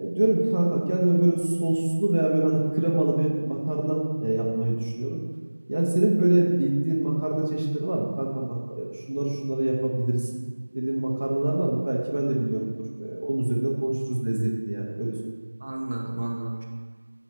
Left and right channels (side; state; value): both; inverted; correlation -1.00